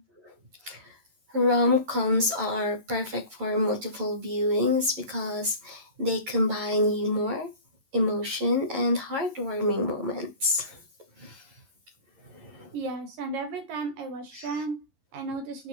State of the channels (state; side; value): late; left; 11 ms